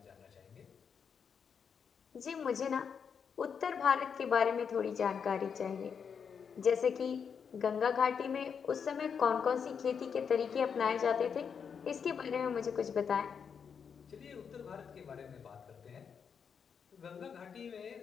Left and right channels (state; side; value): quieter; right; 6.7 dB